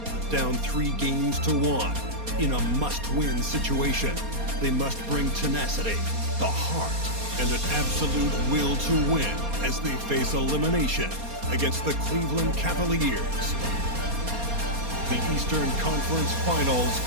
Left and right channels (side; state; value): left; late; 4.3 ms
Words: Down 3 games to 1 in a must-win situation. They must bring tenacity, the heart, and an absolute will to win as they face elimination against the Cleveland Cavaliers. The Eastern Conference Finals